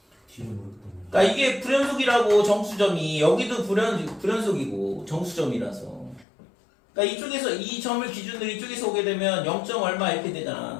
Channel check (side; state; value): right; drops out; at 6.2 s